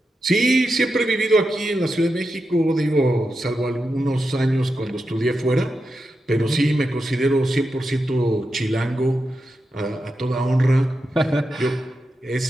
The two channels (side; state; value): both; normal; correlation 0.88